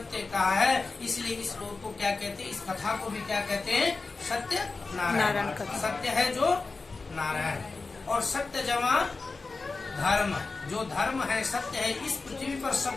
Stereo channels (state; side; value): quieter; right; 3.9 dB